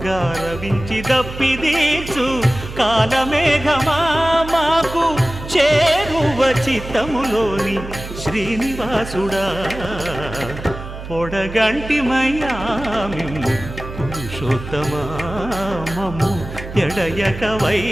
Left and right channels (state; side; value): noise; right; hum, 11 dB below the sound